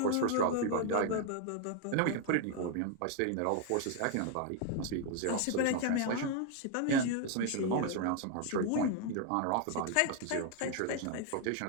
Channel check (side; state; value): both; different; correlation 0.01